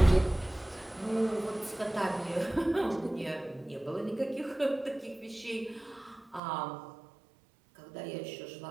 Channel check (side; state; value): left; drops out; at 6.4 s